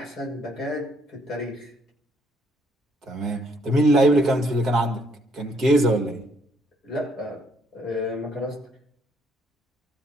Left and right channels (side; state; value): both; normal; correlation 0.68